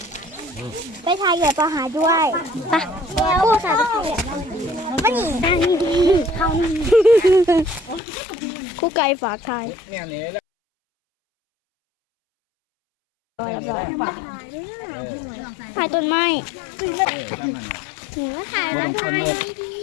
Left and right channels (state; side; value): drops out; right; at 8.0 s